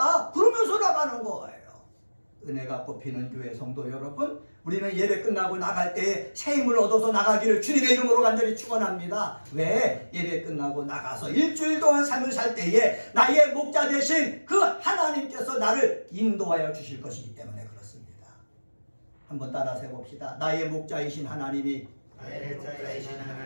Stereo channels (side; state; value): both; inverted; correlation -1.00